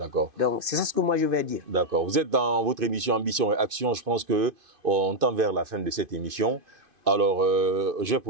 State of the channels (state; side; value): late; left; 2.5 ms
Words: Donc c'est ça ce que moi je vais dire. D'accord. Vous êtes dans votre émission Ambition et Action. Je pense qu'on tend vers la fin de cette émission. Alors je vais